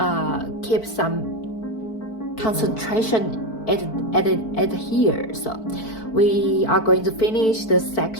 keep some concentration at here. So we are going to finish the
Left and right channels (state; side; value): late; right; 4.5 ms